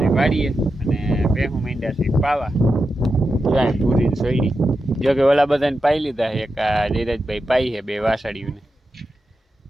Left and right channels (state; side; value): normal; both; correlation 0.89